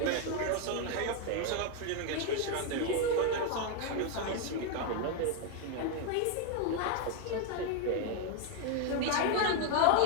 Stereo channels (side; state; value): both; different; correlation 0.01